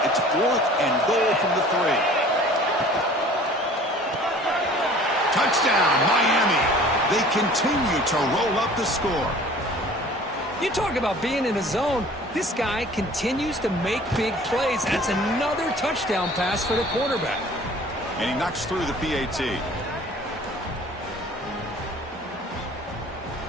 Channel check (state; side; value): normal; both; correlation 0.48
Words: It's 4th and goal from the 3. Touchdown, Miami. They continue to roll up the score. You talk about being in a zone. This guy continues to make big plays. That's another touchdown pass for the quarterback. And he knocks through the PAT.